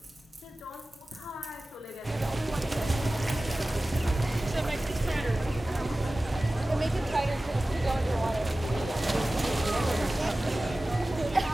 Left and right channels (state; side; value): normal; both; correlation 0.96